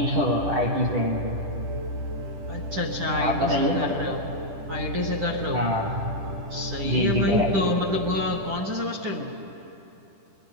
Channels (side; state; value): left; late; 10 ms